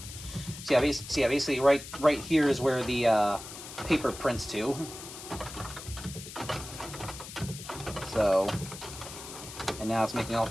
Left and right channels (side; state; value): left; noise; hiss, 12 dB below the sound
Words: So yeah, basically right here is where the paper prints to. So, and now it's making all